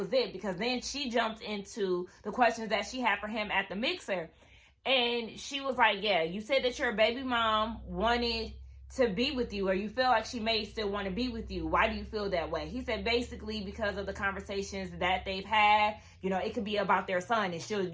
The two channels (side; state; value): both; identical; correlation 1.00